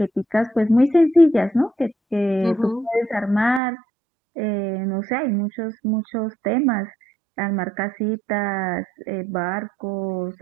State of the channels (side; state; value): left; drops out; at 3.6 s